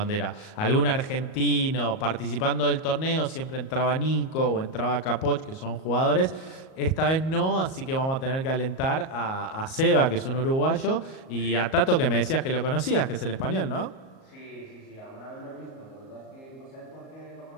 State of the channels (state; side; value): late; right; 38 ms